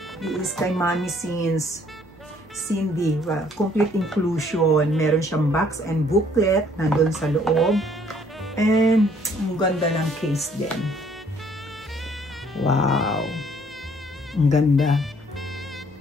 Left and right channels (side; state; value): both; normal; correlation 0.62